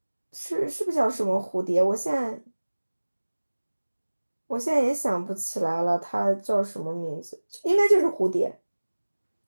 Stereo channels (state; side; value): inverted; both; correlation -1.00